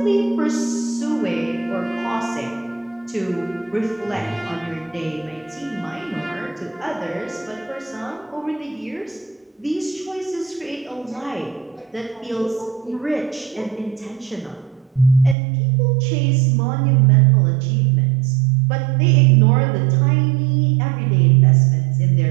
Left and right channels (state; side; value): drops out; left; at 15.4 s